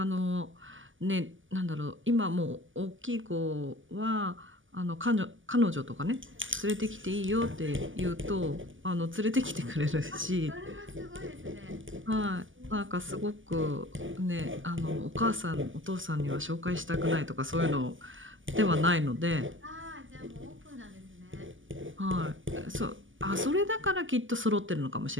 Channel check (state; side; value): late; left; 0.57 ms